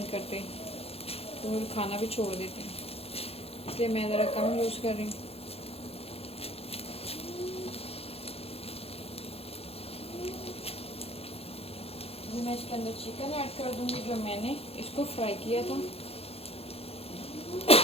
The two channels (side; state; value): right; late; 0.29 ms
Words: करते, तो वो खाना भी छोड़ देते हैं, इसलिए मैं ज़रा कम यूज़ कर रही हूँ। मैं इसके अंदर चिकन ऐड कर दूँगी जो मैंने इसको फ्राई किया था।